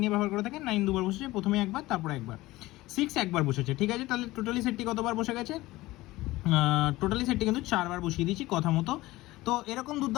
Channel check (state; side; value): quieter; right; 18.5 dB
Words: নিয়ে ব্যবহার করে থাকেন 9 দুবার বসেছে, প্রথমে একবার তারপর একবার। 6 একবার বসেছে। ঠিক আছে, তাহলে টোটালি সেটটি কতবার বসে গেছে? টোটালি সেটটি কিন্তু 4বার বসিয়ে দিয়েছি কথা মতো। তো এরকম